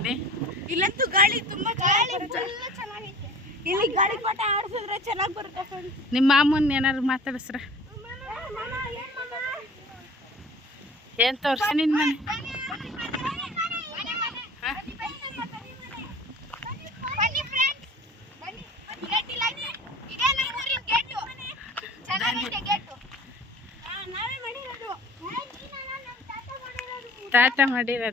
ಇಲ್ಲಂತೂ ಗಾಳಿ ತುಂಬ ಚೆನ್ನಾಗೈತೆ. ಇಲ್ಲಿ ಗಾಳಿ ಪಾಠ ಆಡಿಸಿದ್ರೆ ಚೆನ್ನಾಗಿ ಬರುತ್ತೆ. ನಿಮ್ಮ ಮಾಮೂನ್ ಏನಾದ್ರು ಮಾತಾಡಿಸ್ರ? ಏನು ತೋರಿಸಿ ನಿನ್ನ ಮನೆ? ತಾತ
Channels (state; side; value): normal; both; correlation 0.44